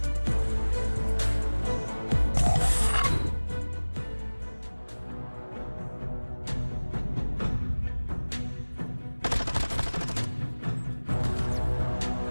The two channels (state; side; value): inverted; both; correlation -1.00